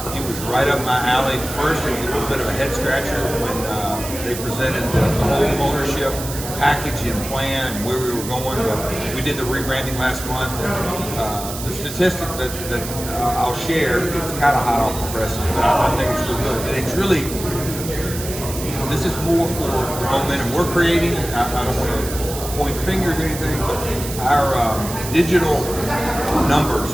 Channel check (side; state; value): right; noise; hiss, 9 dB below the sound